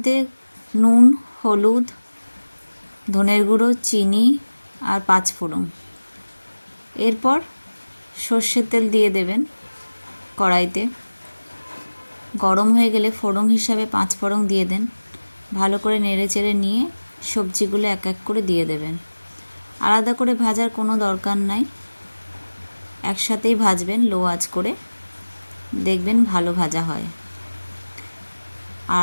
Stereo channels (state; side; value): inverted; both; correlation -1.00